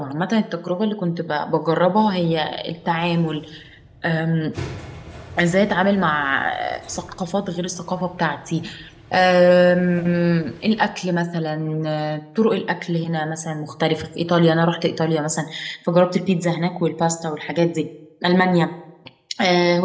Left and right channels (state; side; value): identical; both; correlation 1.00